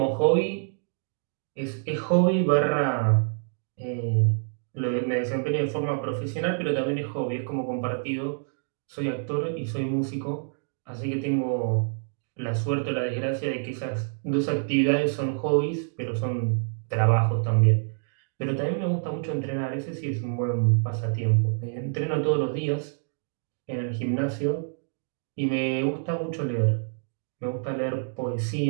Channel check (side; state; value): left; silent; digital silence